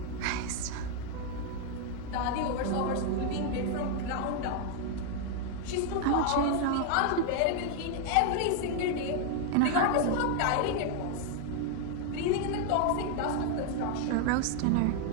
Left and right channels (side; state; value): both; different; correlation 0.00